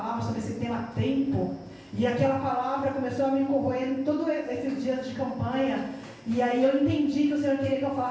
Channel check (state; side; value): identical; both; correlation 1.00